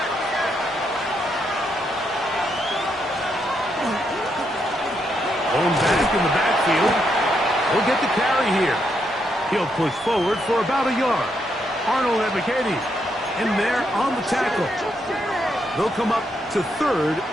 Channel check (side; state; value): both; normal; correlation 0.79